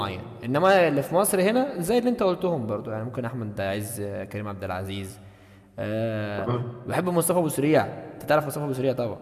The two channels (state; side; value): identical; both; correlation 1.00